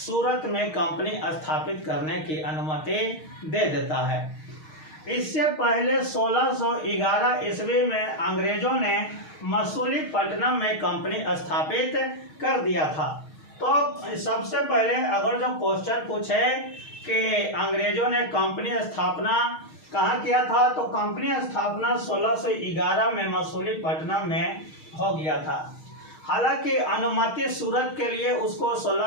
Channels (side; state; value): right; late; 6.4 ms